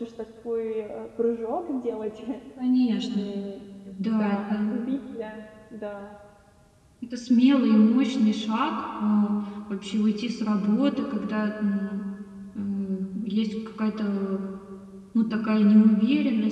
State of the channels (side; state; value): both; identical; correlation 1.00